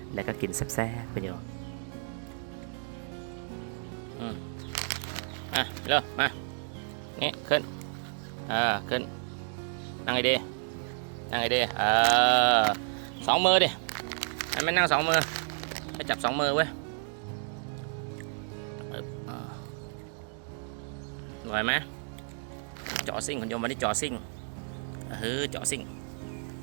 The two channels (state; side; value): silent; left; 57 dB below the other